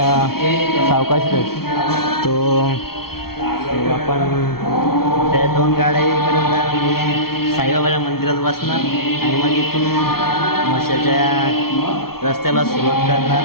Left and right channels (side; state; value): right; late; 0.94 ms